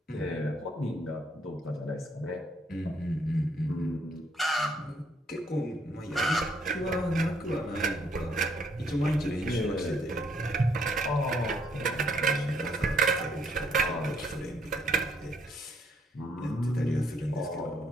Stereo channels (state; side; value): normal; both; correlation 0.69